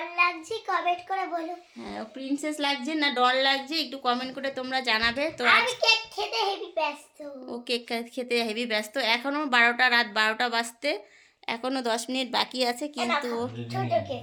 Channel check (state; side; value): identical; both; correlation 1.00